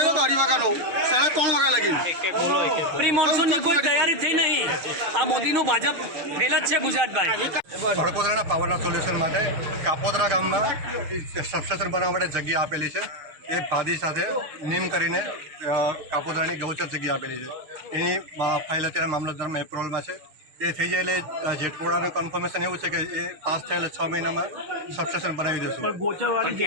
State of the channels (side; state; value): left; late; 6.5 ms